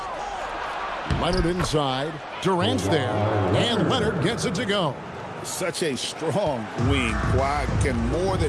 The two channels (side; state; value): both; identical; correlation 1.00